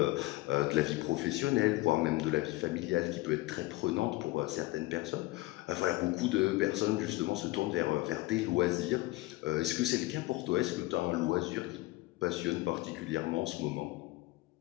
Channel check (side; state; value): right; quieter; 19.7 dB